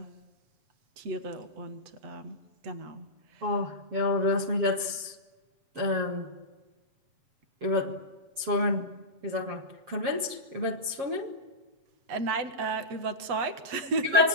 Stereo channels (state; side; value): late; left; 7.4 ms